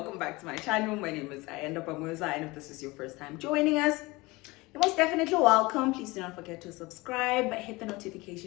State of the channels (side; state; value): right; quieter; 22.7 dB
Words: back to my channel. My name is Ayanda Pamuza, and if this is your first time joining us, you're most definitely welcome. Please do not forget to subscribe, hit the